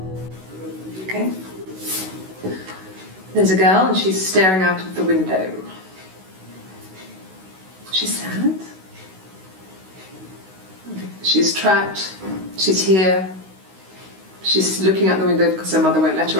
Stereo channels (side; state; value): left; late; 16 ms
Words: Okay. There's a girl and she's staring out of the window. She's sad. She's trapped. She's here. She's looking out the window because her mother won't let her